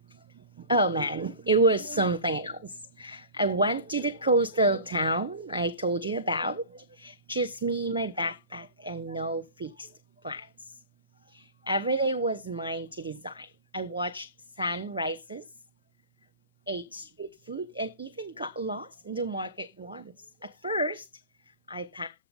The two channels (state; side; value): inverted; both; correlation -0.35